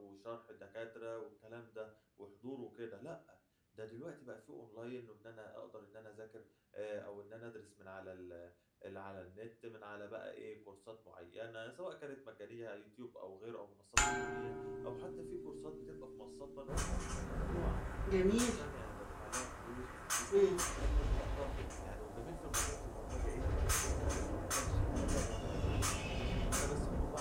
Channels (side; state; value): both; identical; correlation 1.00